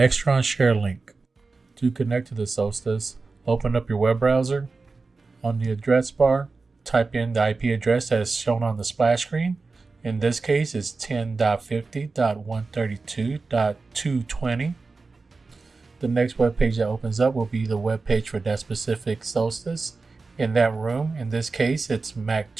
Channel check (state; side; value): quieter; left; 4.0 dB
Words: Sharelink. To connect to the Solstice, open up your web browser. On the address bar, type in the IP address that is shown on the splash screen. In this case, it's 10.50.132.220. The next web page that opens up will be the web page for that specific Solstice. In that room, in this case, it's Mac